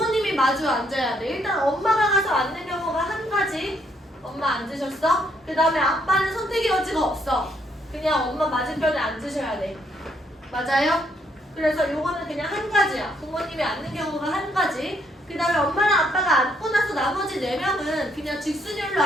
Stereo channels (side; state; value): both; normal; correlation 0.72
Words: 마주 앉아야 돼. 일단 엄마가 가서 앉는 경우가 한 가지. 엄마 앉으셨어? 그 다음에 아빠는 선택의 여지가 없어. 그냥 엄마 맞은편에 앉으셔야 돼. 맞아요? 그래서 요거는 그냥 한 가지야. 부모님이 앉는 경우가 한 가지. 그 다음에 엄마랑 아빠가 앉고 나서 나머지 4명은 그냥 직순열로